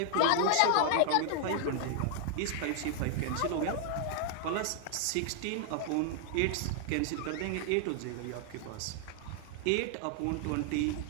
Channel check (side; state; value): both; different; correlation 0.00